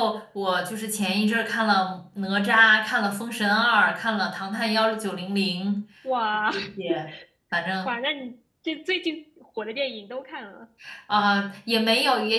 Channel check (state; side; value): identical; both; correlation 1.00